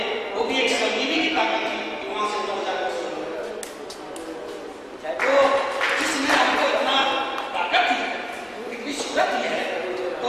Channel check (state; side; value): identical; both; correlation 1.00